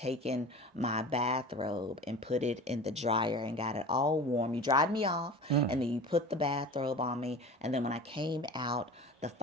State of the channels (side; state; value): both; normal; correlation 0.36